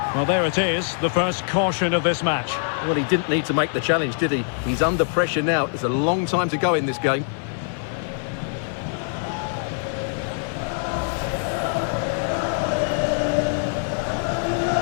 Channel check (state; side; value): silent; right; 63 dB below the other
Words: Well, there it is, the first caution of this match. Well, he didn't need to make the challenge, did he? He's under pressure now. It's a long time to go in this game.